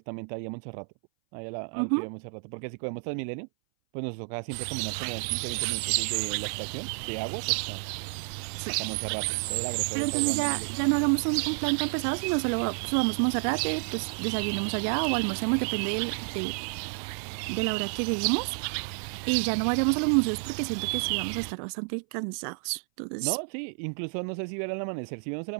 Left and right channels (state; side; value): silent; left; 58 dB below the other